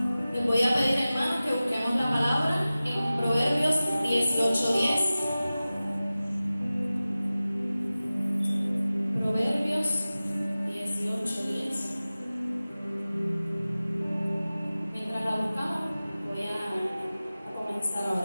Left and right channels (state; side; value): inverted; both; correlation -0.96